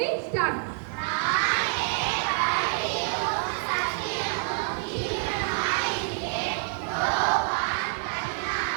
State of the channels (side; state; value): left; silent; digital silence